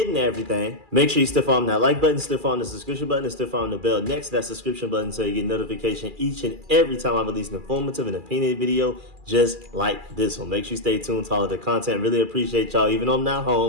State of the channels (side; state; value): left; late; 2.4 ms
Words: into everything, make sure you stiff on that like button, stiff on the subscription button, and stiff on the bell next to that subscription button so you get notification each and every time I release an informative and opinionated video just like this one. Make sure you stay tuned to all of the content. Really appreciate y'all. Even though I'm not